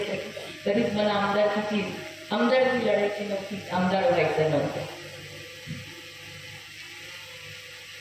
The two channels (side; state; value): both; identical; correlation 1.00